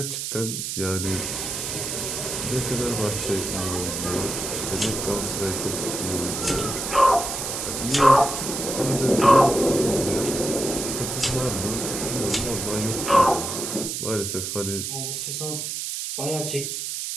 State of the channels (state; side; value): noise; right; hiss, 4 dB below the sound